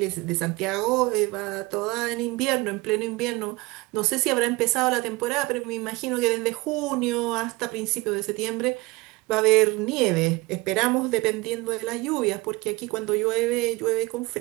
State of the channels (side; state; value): left; quieter; 23.0 dB